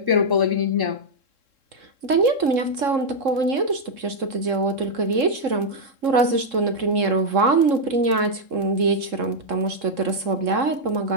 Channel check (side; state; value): left; late; 3.7 ms